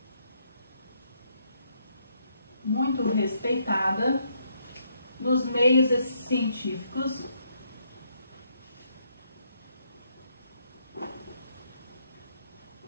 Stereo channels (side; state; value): both; inverted; correlation -0.74